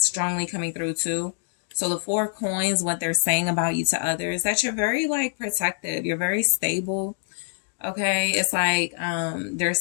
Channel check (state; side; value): silent; right; digital silence